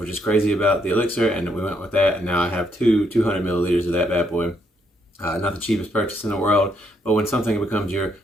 just crazy about the elixir, and we went with that. And now I have 200 milliliters of that bad boy. Not the cheapest purchase in the world, but when something becomes your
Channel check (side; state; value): both; normal; correlation 0.74